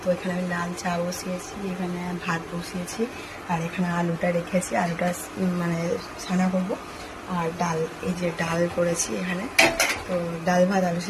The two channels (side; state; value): both; identical; correlation 1.00